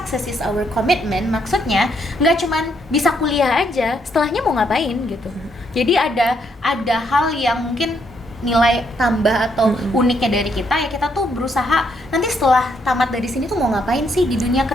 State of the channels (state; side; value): normal; both; correlation 0.74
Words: is our commitment, maksudnya nggak cuman bisa kuliah aja, setelahnya mau ngapain gitu. Jadi ada hal yang mungkin nilai tambah atau uniknya dari kita ya, kita tuh berusaha nanti setelah tamat dari sini tuh mau ngapain sih, di dunia